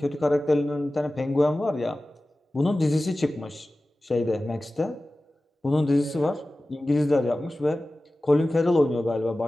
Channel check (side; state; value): both; normal; correlation 0.96